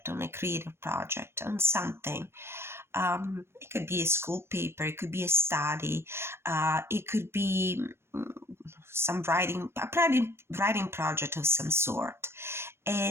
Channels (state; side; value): late; left; 0.12 ms